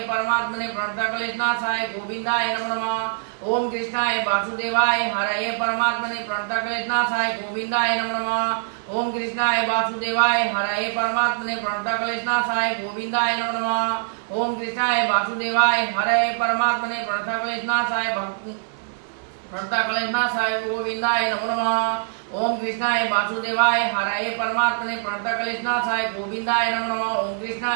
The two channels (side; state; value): left; silent; digital silence